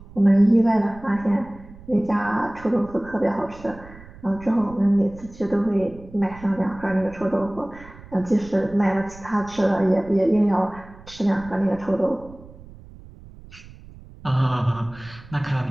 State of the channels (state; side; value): noise; right; rumble, 19 dB below the sound